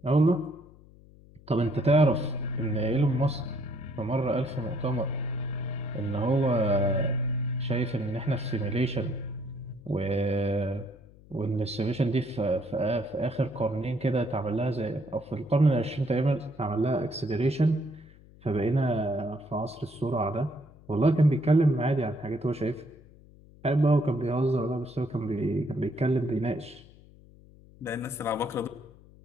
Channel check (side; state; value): left; noise; hum, 24 dB below the sound